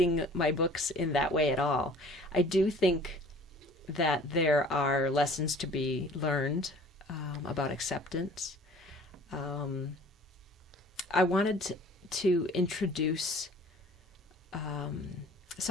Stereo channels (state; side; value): normal; both; correlation 0.49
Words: my books in that way at all. I do think that there are lessons to be learned about acceptance. I wanted to introduce